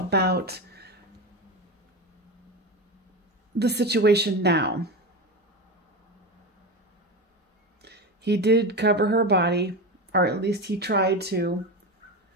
the situation now. He did cover her body, or at least he tried to.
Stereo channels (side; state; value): both; normal; correlation 0.21